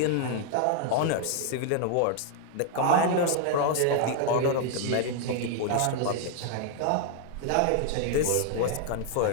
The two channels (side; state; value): both; different; correlation 0.00